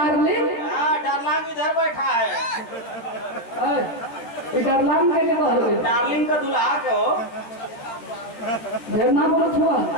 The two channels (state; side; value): late; right; 13 ms